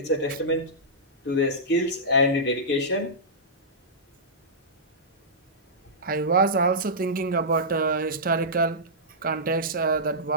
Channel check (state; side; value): normal; both; correlation -0.15